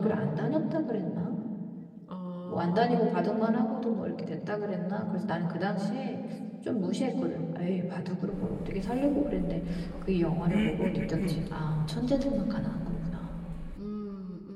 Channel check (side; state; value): both; identical; correlation 1.00